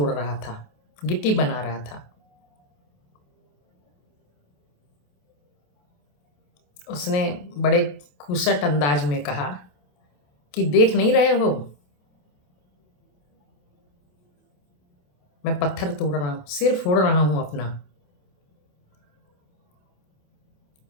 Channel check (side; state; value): right; late; 28 ms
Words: रहा था, गिट्टी बना रहा था। उसने बड़े खुसट अंदाज में कहा कि देख नहीं रहे हो, मैं पत्थर तोड़ रहा हूँ, सिर फोड़ रहा हूँ अपना।